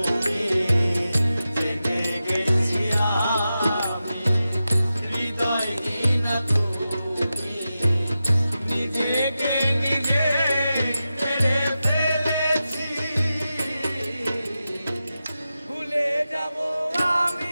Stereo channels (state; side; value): inverted; both; correlation -0.92